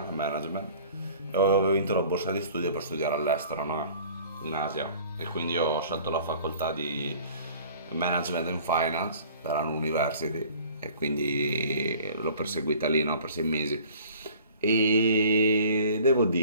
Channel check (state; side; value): inverted; both; correlation -0.49